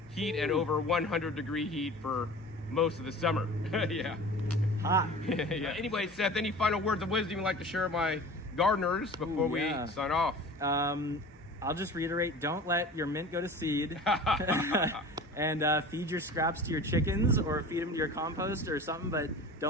heat and over 100-degree heat for most of the summer. Yeah. Hot. Yeah. Anyway, Seth, any final words of wisdom you'd like to share with my gardeners before we sign off? I'll just reiterate, don't let your mint go to seed. And feed your scraps to your chickens or feed them to your compost or something, but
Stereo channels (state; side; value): normal; both; correlation 0.39